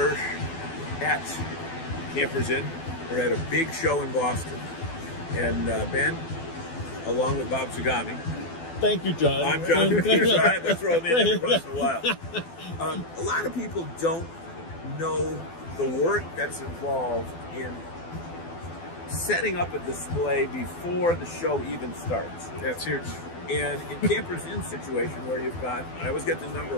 at Campers Inn. We're at a big show in Boston. And Ben, along with Bob Zagami. Thank you, John. I'm John. I have to throw him in every once in a while. A lot of people don't know the work that's involved in setting up a display before the show even starts. That's huge. And in Campers Inn situation where you've got, I always get the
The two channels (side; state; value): right; late; 12 ms